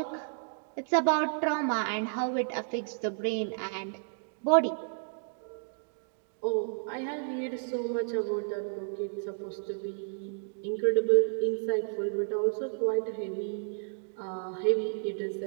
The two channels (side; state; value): left; silent; digital silence